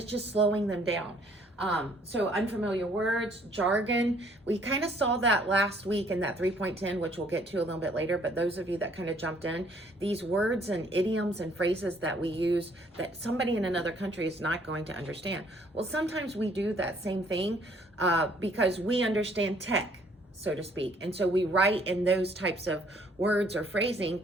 just slowing them down. So unfamiliar words, jargon, we kind of saw that last week in that 3.10, which we'll get to a little bit later, but those of you that kind of jumped in, these words and idioms and phrases that we use that somebody in another country is not going to understand. Well, sometimes we do that same thing because we understand tech, so to speak. And so we write in those types of words or phrasing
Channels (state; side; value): normal; both; correlation 0.62